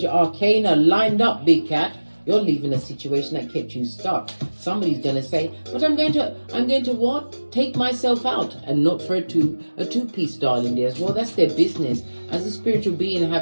arcana lined up, big cat. You're leaving a situation that kept you stuck. Somebody's going to say, but I'm going to what? Take myself out, and not for a two-piece, darling dears. Well, that's their business. As a spiritual being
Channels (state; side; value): inverted; both; correlation -1.00